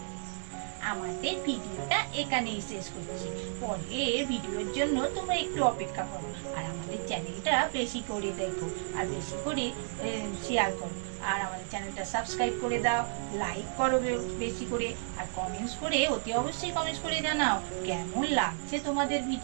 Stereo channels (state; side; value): silent; left; digital silence